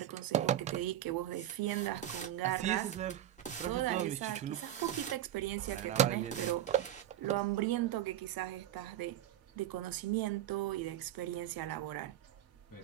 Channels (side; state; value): left; quieter; 12.4 dB